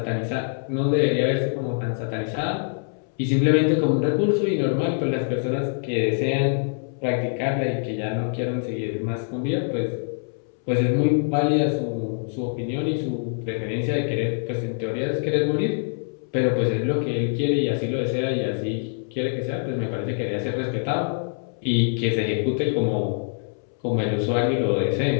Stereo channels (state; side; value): silent; right; 62 dB below the other